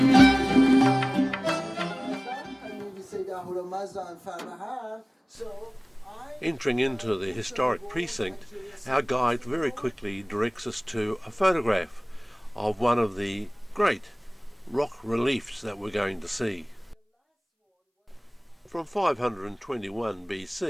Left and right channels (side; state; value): both; identical; correlation 1.00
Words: Entering into the historic precinct, our guide very quickly directs us to a photograph of one of the great rock reliefs that we're going to see. From 521